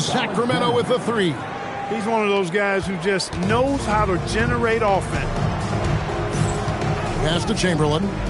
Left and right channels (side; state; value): both; identical; correlation 1.00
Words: with the three. He's one of those guys who just knows how to generate offense. Pass to Chamberlain.